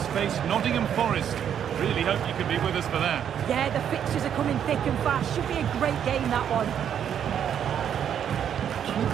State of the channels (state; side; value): quieter; left; 9.0 dB